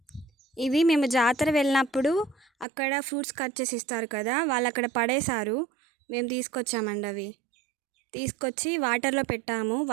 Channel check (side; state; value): left; drops out; at 2.7 s